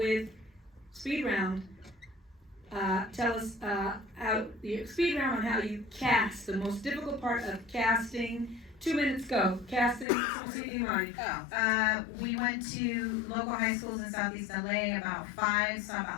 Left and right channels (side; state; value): right; drops out; at 10.1 s